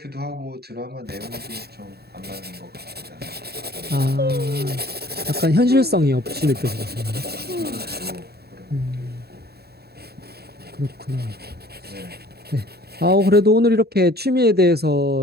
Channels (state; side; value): late; left; 0.46 ms